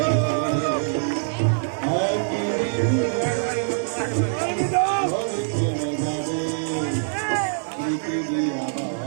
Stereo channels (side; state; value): left; silent; digital silence